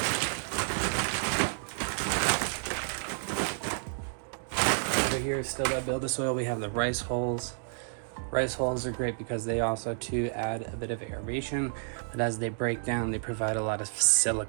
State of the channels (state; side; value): silent; left; digital silence